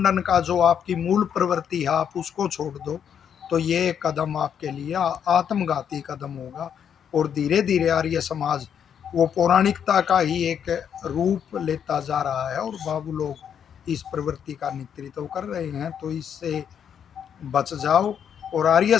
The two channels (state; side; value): quieter; right; 8.3 dB